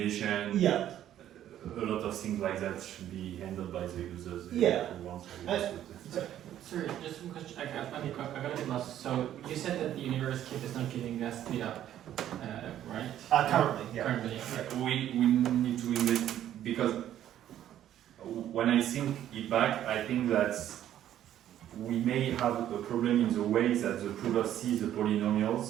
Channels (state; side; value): quieter; left; 11.5 dB